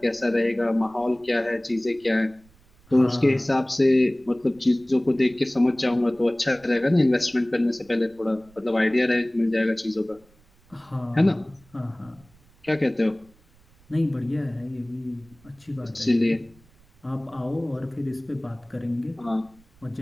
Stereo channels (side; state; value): right; noise; rumble, 30 dB below the sound